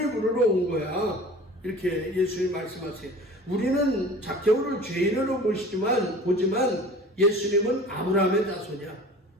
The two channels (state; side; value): normal; both; correlation 0.42